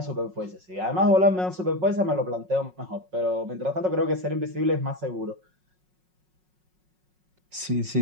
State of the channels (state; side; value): late; left; 5.5 ms